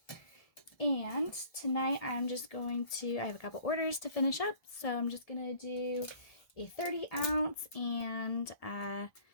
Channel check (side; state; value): right; late; 1.7 ms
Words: And tonight I'm just going to, I have a couple orders to finish up, so I'm just going to do a 30 ounce and